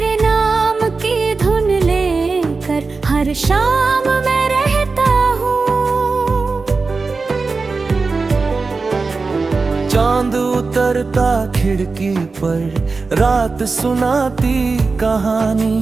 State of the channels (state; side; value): quieter; left; 4.2 dB